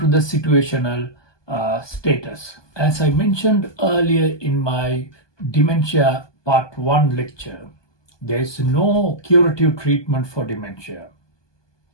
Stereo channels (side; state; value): right; late; 1.2 ms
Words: the situational status. As I mentioned earlier in my dementia part 1 lecture, there is no curative treatment for dementia,